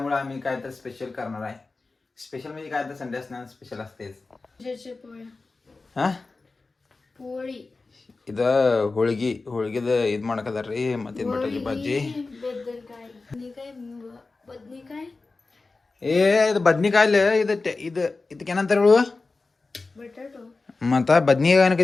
आम्ही काय तर स्पेशल करणार आहे. स्पेशल म्हणजे काय तर संडे असणार स्पेशल असतेच. हा पोळी ಇದು ಹೋಳಿಗೆದ ಇದು ಮಾಡಕದಾರ್ರಿ ಮತ್ತೆ ಬಟಾಟಿ ಭಾಜಿ ಬದ್ನಿಕಾಯಿ ಏ ಇದು ಬದ್ನಿಕಾಯಿಲ್ಲ ಇದಕ್ಕೇನಂತಾರ ಹೇಳು ಬಟಾಟೋ ಮತ್ತ ಬದ್ನಿಕಾಯಿ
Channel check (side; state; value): right; quieter; 3.7 dB